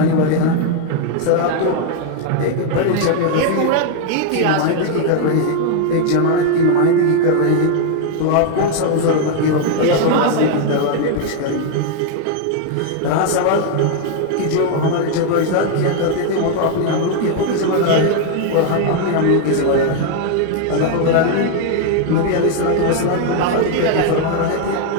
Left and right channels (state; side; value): different; both; correlation 0.00